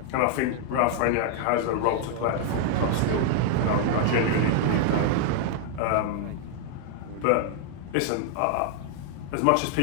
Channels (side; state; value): both; different; correlation 0.00